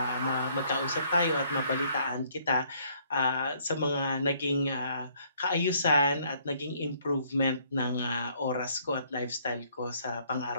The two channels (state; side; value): inverted; both; correlation -0.64